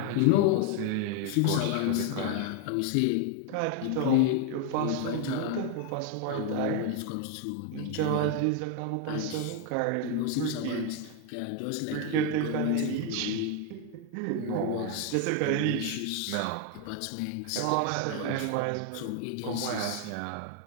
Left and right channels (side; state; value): both; different; correlation 0.01